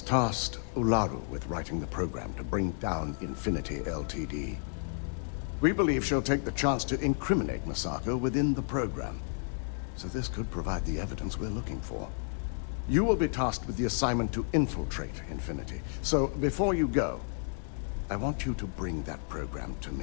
Ularu with writing the program to bring down Infinity Ltd. We believe she'll take the chance to incriminate Masako within the program, so this could provide the evidence we're looking for. You will be tasked with the assignment to infiltrate Infinity, so before you go, I want you to bring that program to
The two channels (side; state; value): right; silent; digital silence